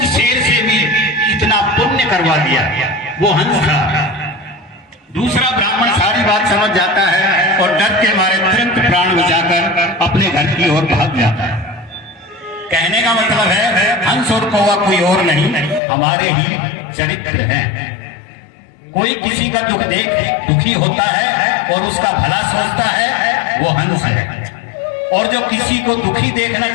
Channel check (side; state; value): right; drops out; at 15.8 s